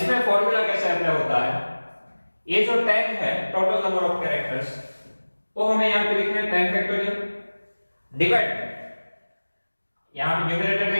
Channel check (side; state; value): both; inverted; correlation -1.00